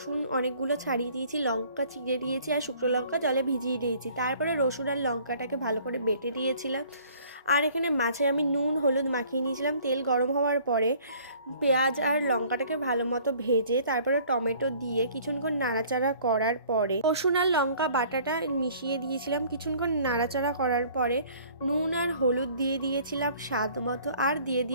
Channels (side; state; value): both; inverted; correlation -0.54